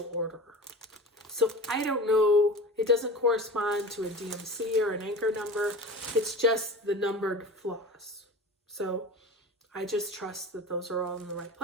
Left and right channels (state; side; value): normal; both; correlation 0.33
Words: order. So I don't know, it doesn't correspond to a DMC or an anchor number. It's just the numbered floss. So I just trust that those are all in the right